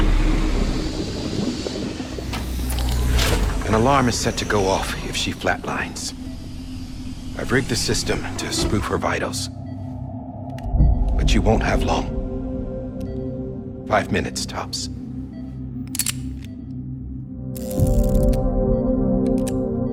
An alarm is set to go off if she flatlines. I've rigged the system to spoof her vitals. But you won't have long. 5 minutes, tops.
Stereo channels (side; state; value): both; identical; correlation 1.00